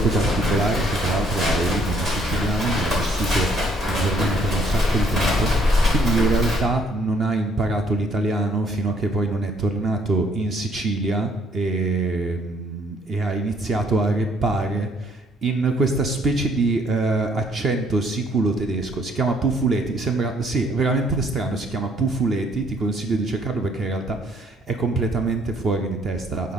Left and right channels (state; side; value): normal; both; correlation 0.65